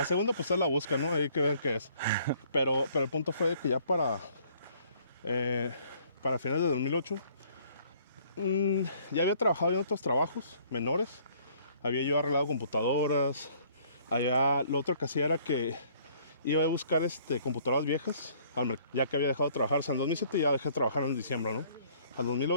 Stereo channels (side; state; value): both; inverted; correlation -0.60